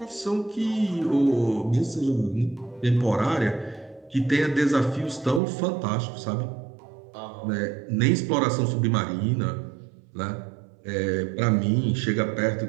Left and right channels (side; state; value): left; drops out; at 5.4 s